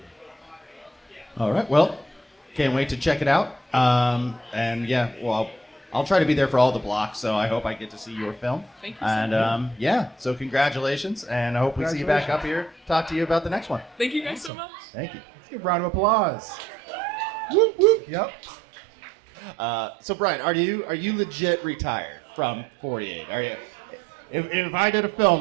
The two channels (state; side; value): drops out; left; at 14.5 s